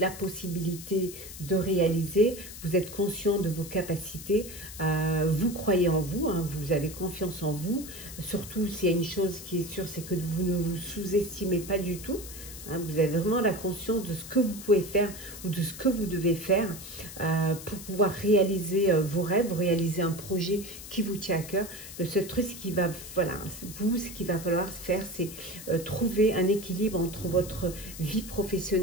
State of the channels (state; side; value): noise; left; hiss, 13 dB below the sound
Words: possibilité de réaliser, vous êtes conscient de vos capacités, vous croyez en vous, hein, vous avez confiance en vous. Surtout, s'il y a une chose qui est sûre, c'est que vous ne vous sous-estimez pas du tout. Hein, vous avez vraiment la conscience de ce que vous pouvez faire ou de ce que vous devez faire pour pouvoir réaliser vos rêves, réaliser un projet qui vous tient à cœur. Le seul truc, ce qu'il va falloir faire, c'est trouver un équilibre entre votre vie